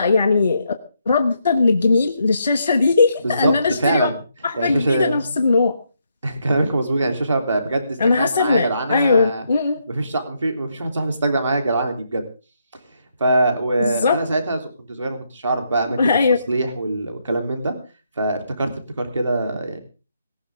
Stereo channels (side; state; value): both; inverted; correlation -0.78